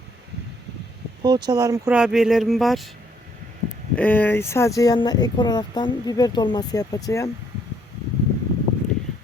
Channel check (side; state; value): both; normal; correlation 0.68